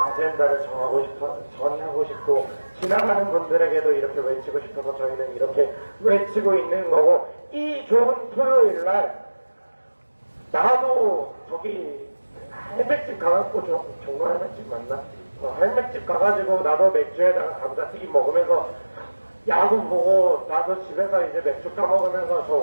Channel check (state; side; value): inverted; both; correlation -1.00